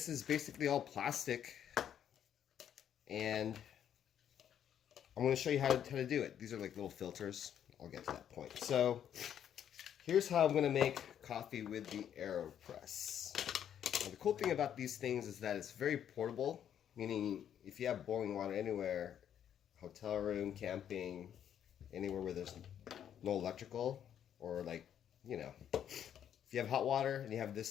is basically all plastic, and I'm going to show you how to do it. These are like little filters. I'll get to that point. So here's how I'm going to make coffee with the Aeropress. Now, the cool thing about these things is that it's very portable, meaning if you have boiling water anywhere, hotel room, camping, anywhere where there's no electrical, or like, you know, if you have hot water and you have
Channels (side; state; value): right; quieter; 9.5 dB